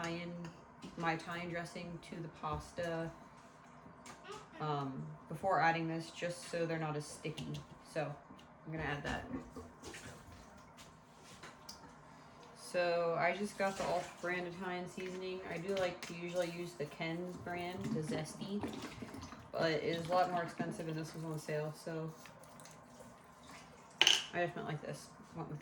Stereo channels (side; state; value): both; identical; correlation 1.00